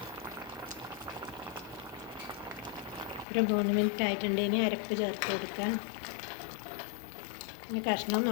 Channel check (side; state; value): right; drops out; at 3.2 s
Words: ഒരു 3 മിനിറ്റ് ആയിട്ടുണ്ട്. ഇനി അരപ്പ് ചേർത്ത് കൊടുക്കാം. ഇനി